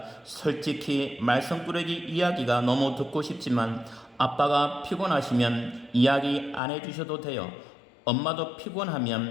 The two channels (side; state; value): right; drops out; at 6.6 s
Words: 솔직히 말썽꾸러기 이야기가 너무 듣고 싶지만 아빠가 피곤하시면 이야기 안 해주셔도 돼요. 엄마도